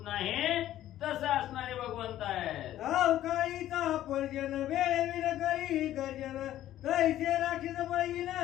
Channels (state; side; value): quieter; right; 13.0 dB